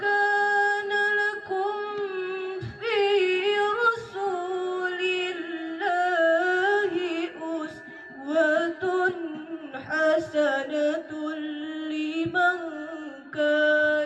lakum fi rasulillahi uswatun hasanatun liman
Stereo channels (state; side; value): identical; both; correlation 1.00